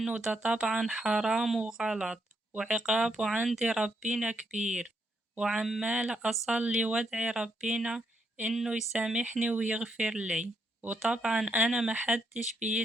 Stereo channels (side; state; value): both; normal; correlation 0.77